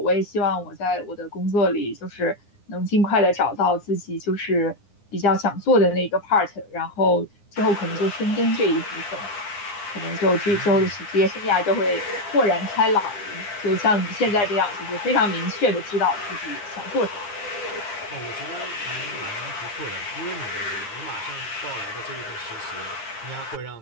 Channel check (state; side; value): late; right; 9.7 ms